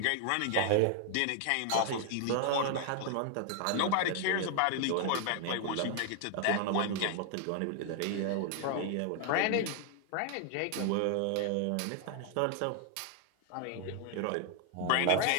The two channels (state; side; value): different; both; correlation 0.00